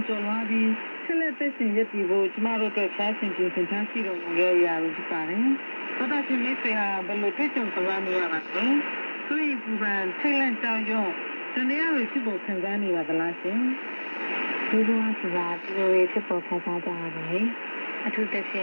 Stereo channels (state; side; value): inverted; both; correlation -1.00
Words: ကျော်လွှားပြီးဆက်လက်သက်ရှင်ရည်တည်ဖို့ကျမတို့အတွက်ဖျားရှင်ပြင်ဆင်ထားရှိတော်မူရဲ့အရာတွေဖြစ်ပါတယ်။သောတာရှင်မိတ်ဆွေဟာဘယ်လိုတွေ့ကြုံကြရနေရပါလဲ။ဆွေးရင်ပူပန်ထိတ်လန့်ကြောက်ရွံ့တန်ရည်ဖြစ်ပေါ်ခံစားနေပါသလားရှင်။ဒီလိုဆိုတာဒီလိုဖြစ်ပေါ်ခံစားကြရပါတယ်။အထူးသဖြ